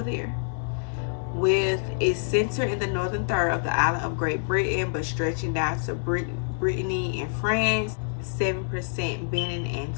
there. With its center in the northern third of the island of Great Britain, but stretching down to Brittany and France, 7% Benin and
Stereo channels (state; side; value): silent; right; digital silence